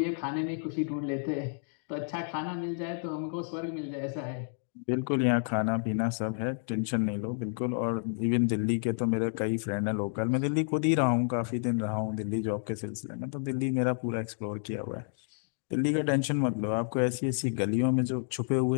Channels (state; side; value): silent; right; digital silence